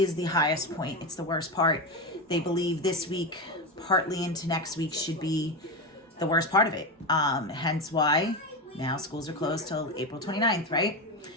the highest point. It's the worst part. They believe this week, partly into next week, should be the worst part of it. Hence why now schools are closed till April 29th, right?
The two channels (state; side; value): normal; both; correlation 0.16